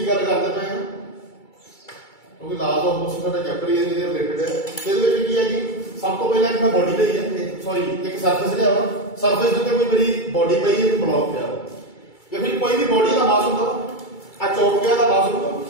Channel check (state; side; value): late; right; 2.3 ms